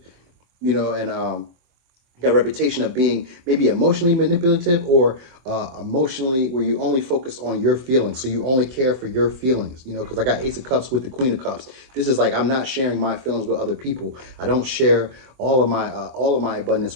you know, and got a reputation of being maybe emotionally manipulative or emotionally where you only focus on your feelings. So you only care for your feelings, you know, because I got Ace of Cups with the Queen of Cups. This is like, I'm not sharing my feelings with other people. I don't share all of my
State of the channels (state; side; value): late; left; 23 ms